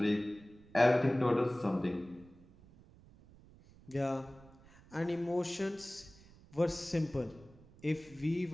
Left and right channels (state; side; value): noise; right; rumble, 24 dB below the sound